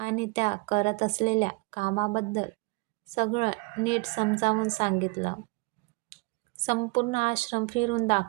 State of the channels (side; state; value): left; quieter; 27.8 dB